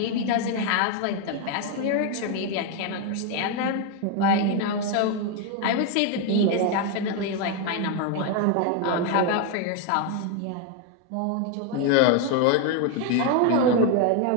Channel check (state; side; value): different; both; correlation 0.01